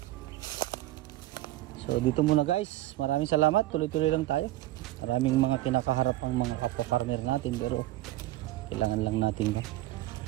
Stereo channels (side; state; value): left; quieter; 16.2 dB